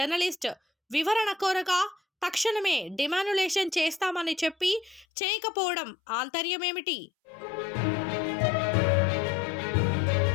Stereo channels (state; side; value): drops out; right; at 5.1 s